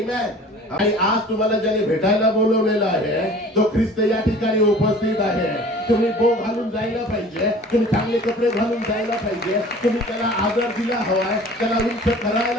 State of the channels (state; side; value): normal; both; correlation 0.45